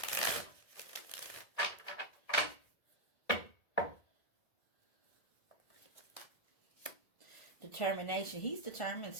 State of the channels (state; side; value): late; right; 1.8 ms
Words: Determination. He's determined